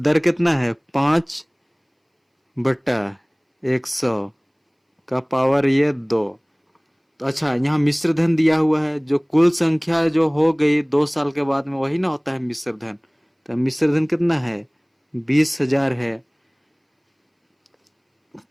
कितना है, 5/100 का पावर ये 2। तो अच्छा, यहाँ मिश्र धन दिया हुआ है, जो कुल संख्या जो हो गई 2 साल के बाद में, वही ना होता है मिश्र धन। तो मिश्र धन कितना है, 20,000 है।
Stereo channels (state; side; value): identical; both; correlation 1.00